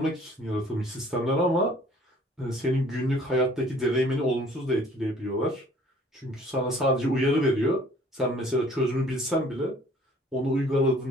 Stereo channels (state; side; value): normal; both; correlation 0.55